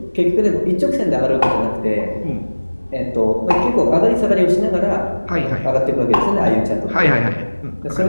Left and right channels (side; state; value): both; inverted; correlation -1.00